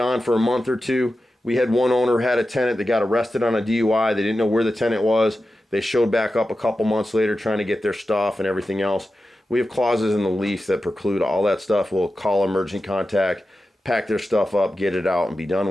for a month or two. We had one owner had a tenant that got arrested on a DUI. They didn't know where the tenant was. They showed back up a couple months later trying to get their stuff and everything else. We have clauses in the lease that preclude all that stuff. We'll call emergency contact, pack their stuff up, get it out, and be done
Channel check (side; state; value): both; normal; correlation 0.92